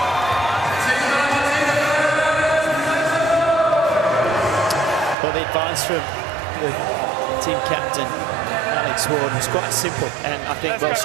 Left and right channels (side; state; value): left; drops out; at 5.2 s